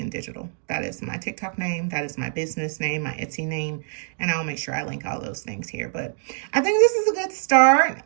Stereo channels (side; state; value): left; silent; digital silence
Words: Digital. That is my TikTok name. That is my business name, my Etsy name, and I'll make sure I link all those things here. But I think this is a good start.